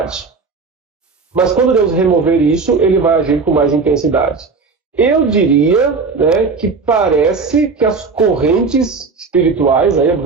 Mas quando Deus remover isso, ele vai agir com mais intensidade. Eu diria, né, que parece que as correntes espirituais, aí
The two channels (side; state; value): left; quieter; 4.6 dB